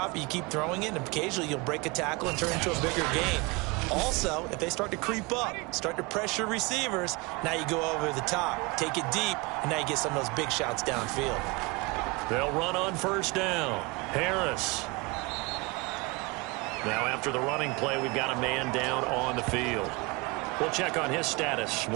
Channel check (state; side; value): quieter; left; 26.1 dB